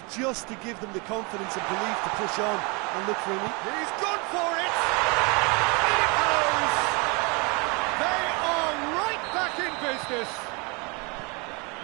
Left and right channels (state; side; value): quieter; left; 30.2 dB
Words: just to give them the confidence and belief to push on and look for it. He's gone for it! In it goes! They are right back in business!